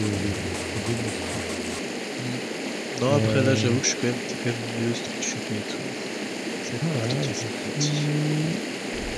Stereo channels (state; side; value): identical; both; correlation 1.00